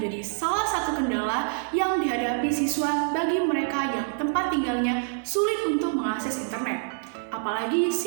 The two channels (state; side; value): silent; left; 59 dB below the other